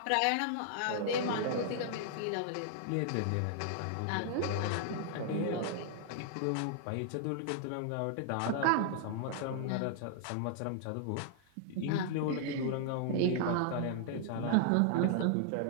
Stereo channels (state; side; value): different; both; correlation -0.01